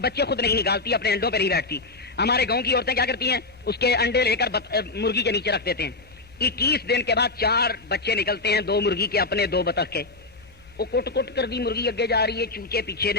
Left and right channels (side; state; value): right; quieter; 3.4 dB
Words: خود نہیں نکالتی، اپنے انڈوں پہ نہیں بیٹھتی۔ ہمارے گاؤں کی عورتیں کیا کرتی ہیں، اس کے انڈے لے کر مرغی کے نیچے رکھ دیتے ہیں۔ 21 دن کے بعد 4 بچے نکلتے ہیں، 2 مرغی کے اپنے، 2 بطخ کے۔ وہ کٹ کٹ کر دی مرغی اگے جا رہی ہے، چوچے پیچھے